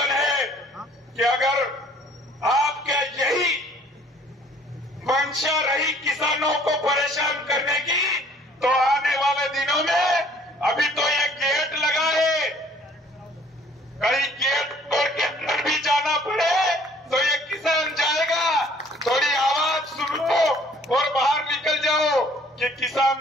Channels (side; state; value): both; normal; correlation 0.57